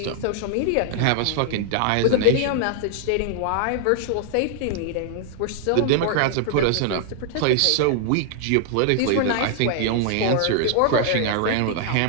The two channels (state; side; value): different; both; correlation -0.01